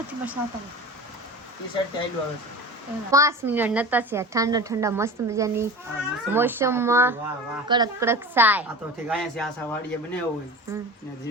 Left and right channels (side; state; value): both; normal; correlation 0.33